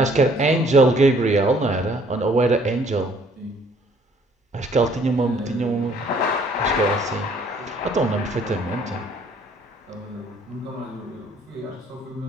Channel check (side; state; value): both; normal; correlation 0.61